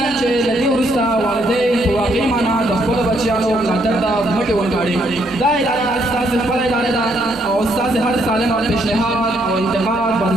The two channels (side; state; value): both; normal; correlation 0.72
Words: چې له دې وروسته والدین په واقعي معنا د خپلو بچیانو ملاتړ ته مټې ورکاړي. دا اداره ستاسې خپله اداره ده او ستاسې هر سالم پیشنهاد او انتقاد به د